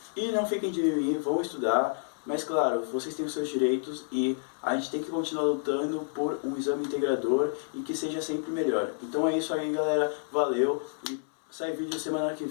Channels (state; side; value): silent; right; 58 dB below the other